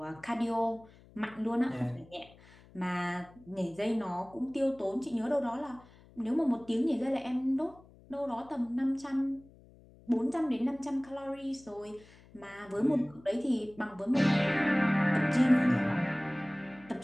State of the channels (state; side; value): noise; left; hum, 24 dB below the sound